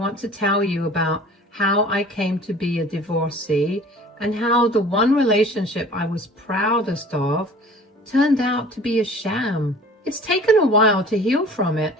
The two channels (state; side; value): normal; both; correlation 0.46